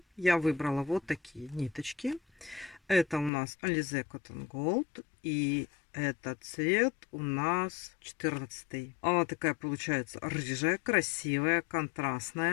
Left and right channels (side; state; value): right; drops out; at 3.3 s